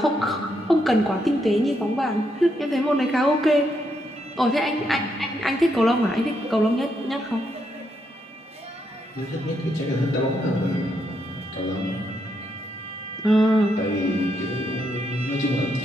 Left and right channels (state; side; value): normal; both; correlation 0.79